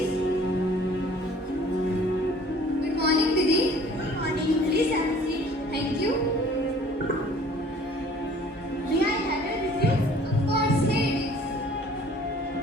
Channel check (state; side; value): normal; both; correlation 0.52